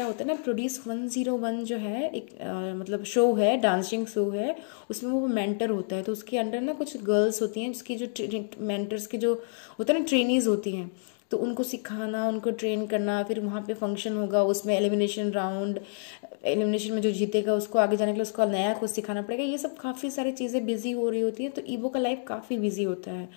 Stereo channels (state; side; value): silent; right; digital silence